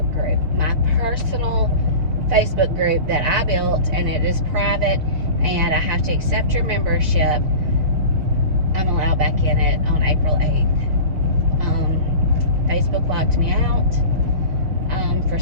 group, my personal Facebook group that I built, and it is private, and I have to accept your membership. I'm allowed back in it on April 8th. Facebook locked me out for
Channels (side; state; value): left; late; 6.2 ms